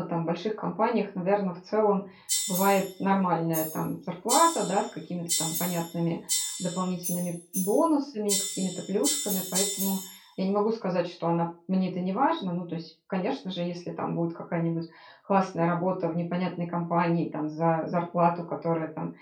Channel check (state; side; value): identical; both; correlation 1.00